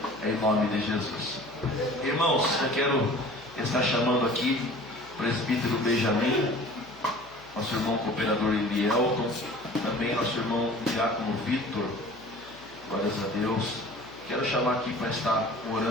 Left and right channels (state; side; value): noise; left; hum, 22 dB below the sound